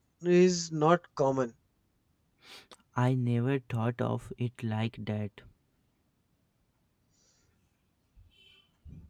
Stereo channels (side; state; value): both; identical; correlation 1.00